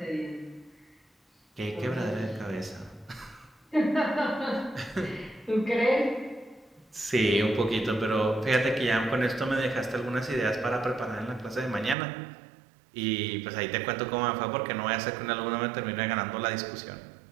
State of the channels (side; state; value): left; drops out; at 12.0 s